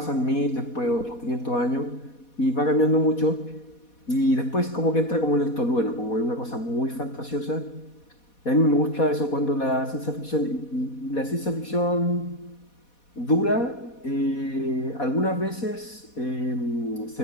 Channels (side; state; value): right; late; 4.2 ms